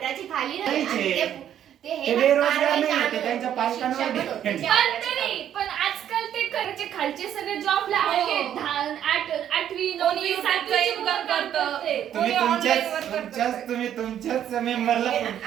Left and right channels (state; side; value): quieter; left; 10.3 dB